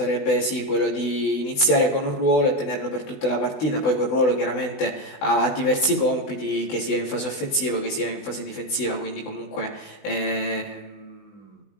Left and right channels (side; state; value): right; late; 20 ms